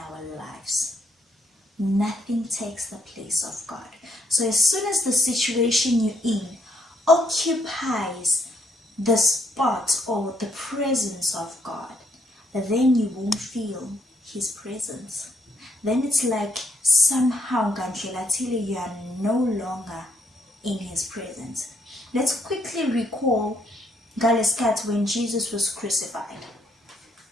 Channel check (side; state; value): both; normal; correlation 0.72